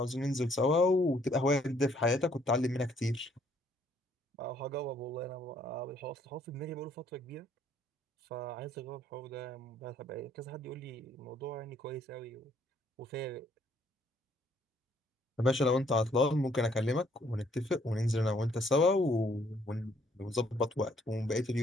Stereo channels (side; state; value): both; normal; correlation 0.66